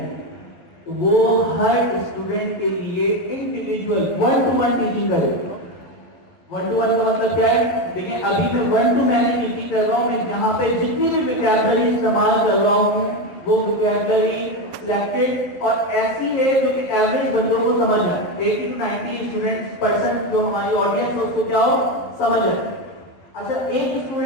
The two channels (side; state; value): right; late; 11 ms